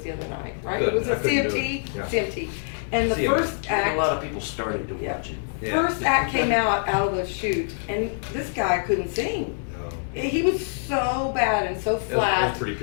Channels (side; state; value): right; silent; digital silence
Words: the other night, right? Good. It was I a couldn't do it. CMT? Yeah. CMT. And the CMA. first And act, a lot of people started to Yeah. watch it. Yeah. first act came out of the chute, and this guy couldn't sing. No. He was so bad and so That's flat. pretty